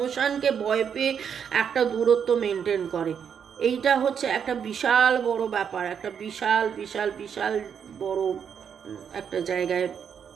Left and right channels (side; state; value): left; quieter; 7.6 dB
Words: ভয় পেয়ে একটা দূরত্ব মেনটেন করে। এইটা হচ্ছে একটা বিশাল বড় ব্যাপার, একটা বিশাল বিশাল বিশাল বড় একটা জায়গায়।